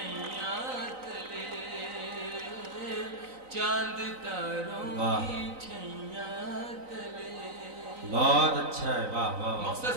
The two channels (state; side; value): late; left; 3.9 ms